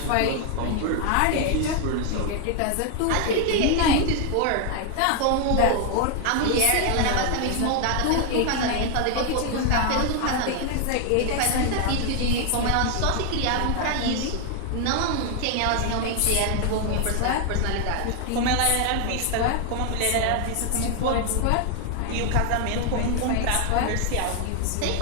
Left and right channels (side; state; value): both; different; correlation 0.00